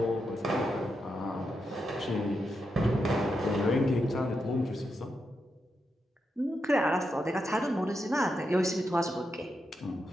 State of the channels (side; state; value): both; normal; correlation 0.85